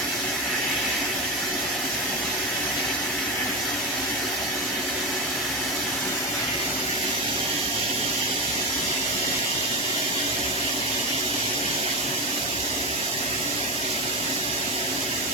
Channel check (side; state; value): both; normal; correlation 0.18